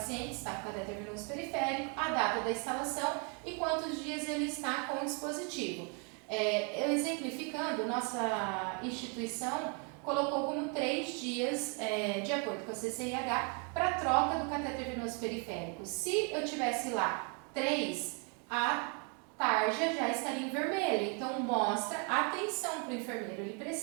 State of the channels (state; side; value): quieter; left; 37.3 dB